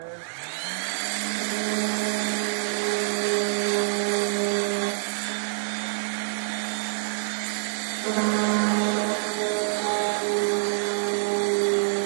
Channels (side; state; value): left; silent; digital silence